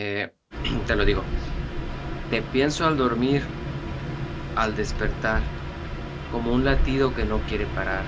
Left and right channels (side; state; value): both; identical; correlation 1.00